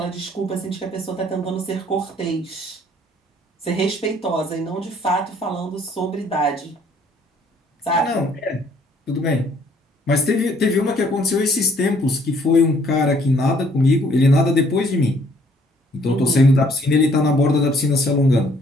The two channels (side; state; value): both; normal; correlation 0.62